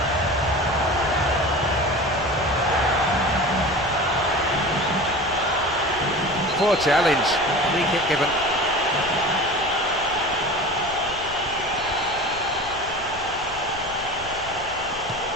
Poor challenge. Free kick given.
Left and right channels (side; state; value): left; noise; rumble, 17 dB below the sound